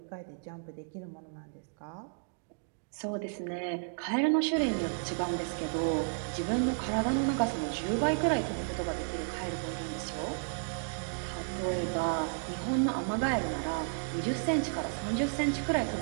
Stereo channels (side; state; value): left; silent; digital silence